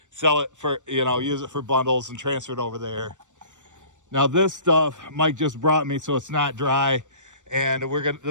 sell it for, use it for bundles and transfer it over there. Now this stuff Mike just brought me, so it's not dry. And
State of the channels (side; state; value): left; late; 0.85 ms